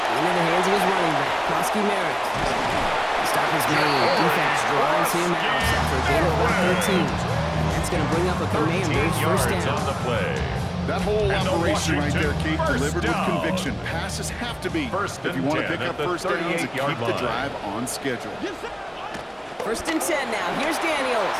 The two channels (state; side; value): identical; both; correlation 1.00